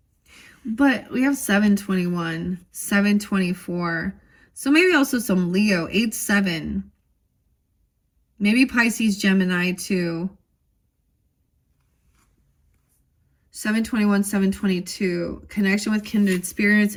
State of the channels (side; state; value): both; identical; correlation 1.00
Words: But we have 721, 724. So maybe also some Leo, 8-7. Maybe Pisces, Gemini too. 721, 722. Connection with kindred spirits